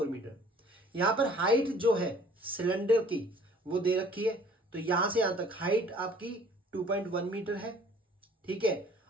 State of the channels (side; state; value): both; normal; correlation 0.53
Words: metre. यहां पर हाइट जो है सिलेंडर की वो दे रखी है, तो यहां से यहां तक हाइट आपकी 2.1 मीटर है। ठीक है,